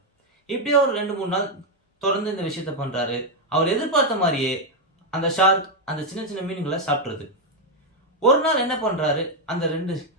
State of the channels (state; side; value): normal; both; correlation 0.02